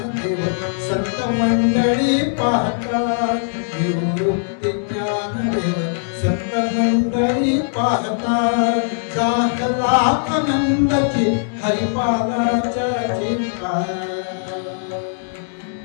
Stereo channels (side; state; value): right; silent; digital silence